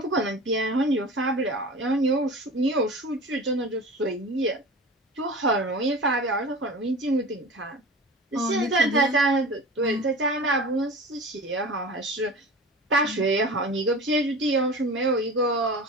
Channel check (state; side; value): normal; both; correlation 0.35